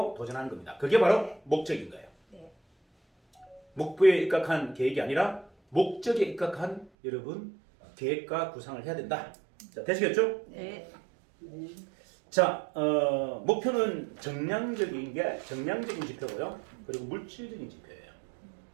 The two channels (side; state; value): left; drops out; at 6.9 s